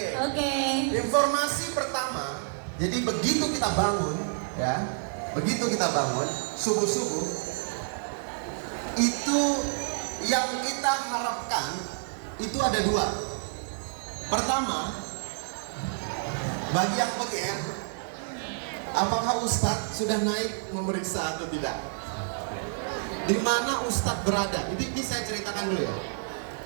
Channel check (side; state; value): left; silent; 59 dB below the other